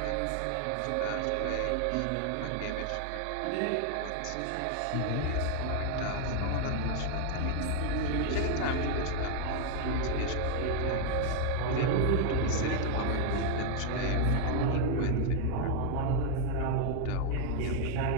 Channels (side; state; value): both; different; correlation 0.00